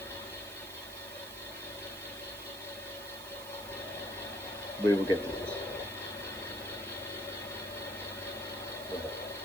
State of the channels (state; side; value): noise; right; hiss, 12 dB below the sound